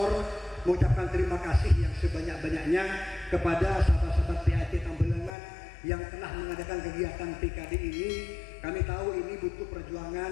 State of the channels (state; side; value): drops out; right; at 5.3 s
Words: mengucapkan terima kasih yang sebanyak-banyaknya kepada sahabat-sahabat PAT Tambelangan yang telah mengadakan kegiatan PKD ini. Kami tahu ini butuh